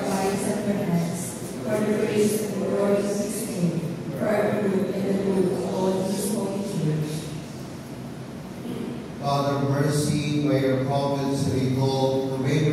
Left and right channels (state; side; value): identical; both; correlation 1.00